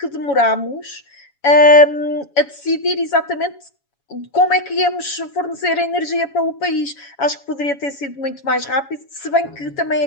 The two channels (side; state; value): right; late; 7.1 ms